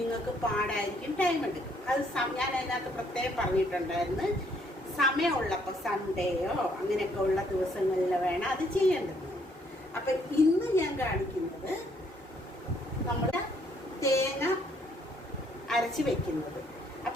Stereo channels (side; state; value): both; normal; correlation 0.68